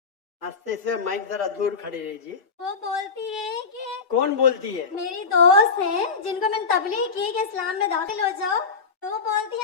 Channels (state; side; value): quieter; right; 5.1 dB